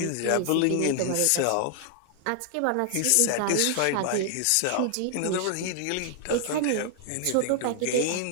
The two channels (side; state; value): both; different; correlation 0.00